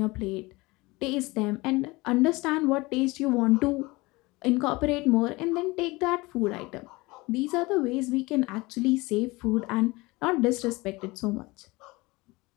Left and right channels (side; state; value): right; quieter; 22.7 dB